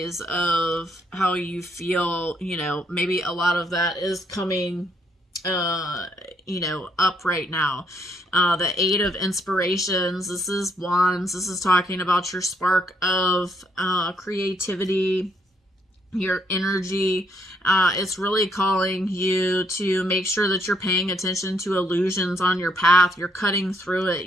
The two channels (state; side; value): normal; both; correlation 0.72